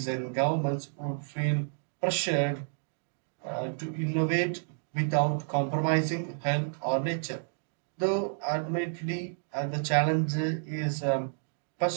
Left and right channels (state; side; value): silent; left; digital silence